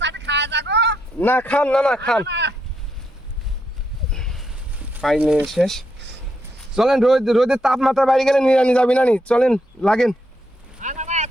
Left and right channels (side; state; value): both; normal; correlation 0.80